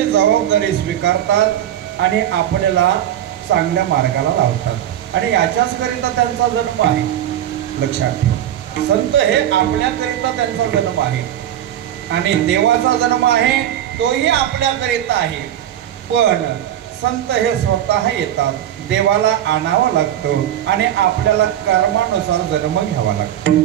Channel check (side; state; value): left; quieter; 11.3 dB